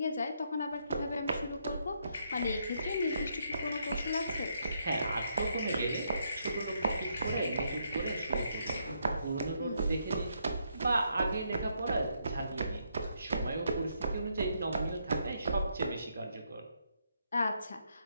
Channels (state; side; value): inverted; both; correlation -0.76